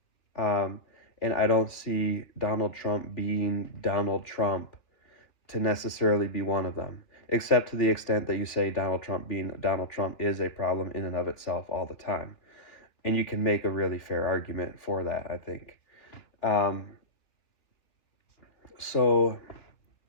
um, and I don't see Donald Trump being Donald Trump to necessarily be one of them, except to the extent that you say Donald Trump being Donald Trump is a problem in and of itself all the time. And you can make a really fair argument for that, I think. Um, so,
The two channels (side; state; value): right; late; 2.8 ms